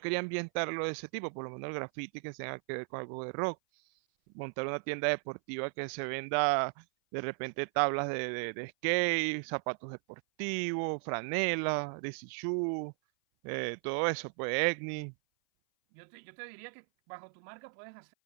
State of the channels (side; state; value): left; silent; 54 dB below the other